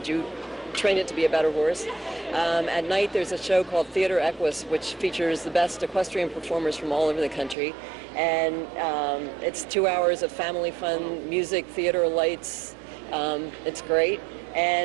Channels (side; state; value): left; drops out; at 7.6 s